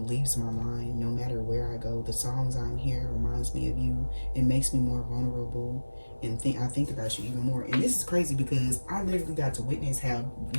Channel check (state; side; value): inverted; both; correlation -1.00